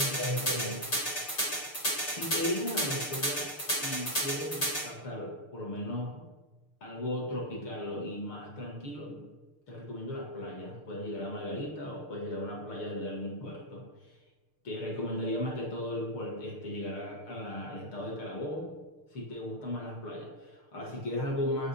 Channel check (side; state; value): right; late; 6.7 ms